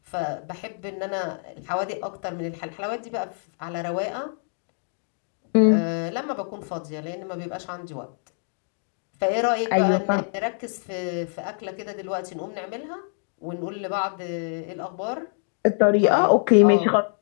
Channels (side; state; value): right; silent; digital silence